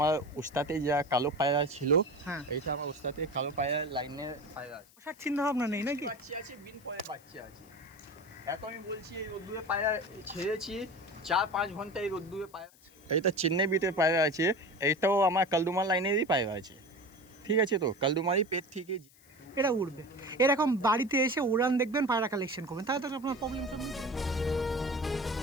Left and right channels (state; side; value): noise; left; hiss, 27 dB below the sound